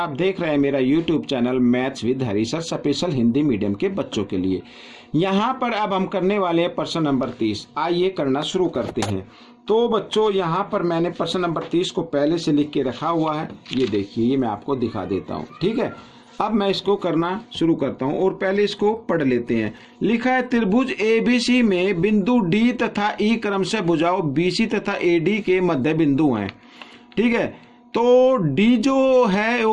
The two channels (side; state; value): both; identical; correlation 1.00